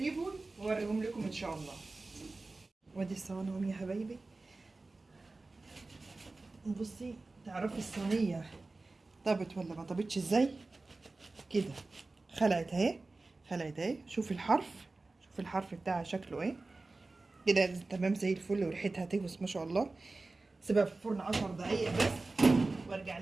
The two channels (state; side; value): quieter; left; 3.4 dB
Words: واوريهم لكم ان شاء الله. وادي الصواني يا حبايبي. بصي تعرفي الصينيه طابت ولا ما طابتش ازاي؟ كده خلعت اهي، خلعت اهي. شوفي الحرف، شوفي الحرف بتاعها شكله ايه كده. تمام زي الفل، وريحتها تهوس ما شاء الله. سيبها في الفرن 10 دقايق بس وارجع